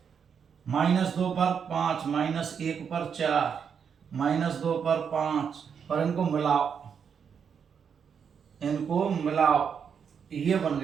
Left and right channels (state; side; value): quieter; left; 7.0 dB